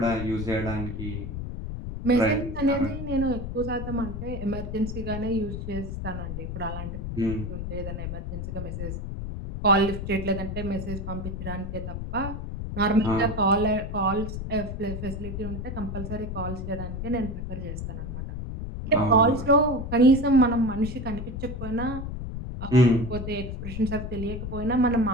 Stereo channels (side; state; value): left; noise; rumble, 6 dB below the sound